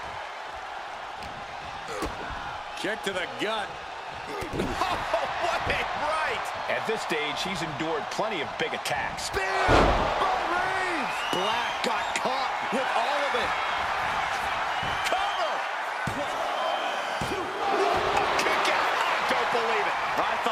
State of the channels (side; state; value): both; identical; correlation 1.00